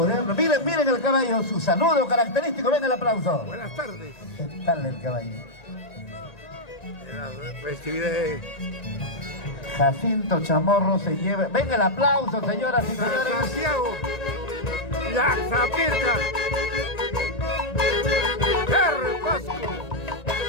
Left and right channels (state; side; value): late; right; 1.9 ms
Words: el... Miren, miren el caballo, su saludo característico, ven el aplauso. Buenas tardes. ¿Qué tal el caballo? La festividad de Jacinto Chamorro se lleva... Ven el aplauso, señoras y señores. Santiago, Yaxapirca, Jerry Pasco.